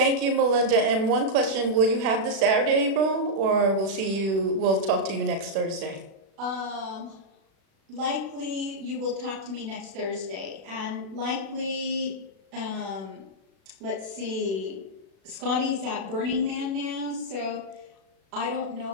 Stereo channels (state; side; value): late; left; 36 ms